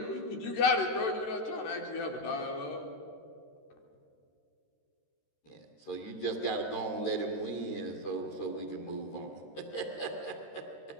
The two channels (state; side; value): late; right; 13 ms